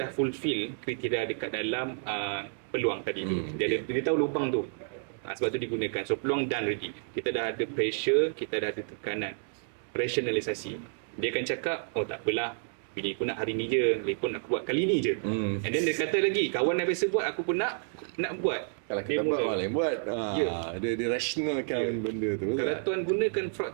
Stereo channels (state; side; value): silent; left; digital silence